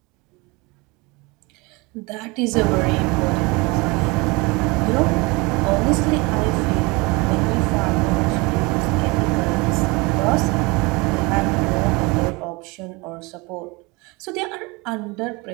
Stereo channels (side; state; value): left; quieter; 25.8 dB